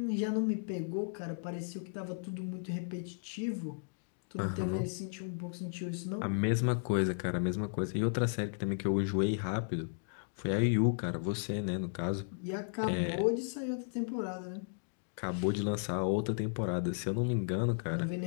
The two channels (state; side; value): silent; right; digital silence